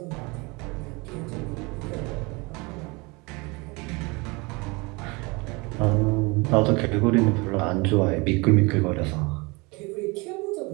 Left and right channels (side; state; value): left; quieter; 26.7 dB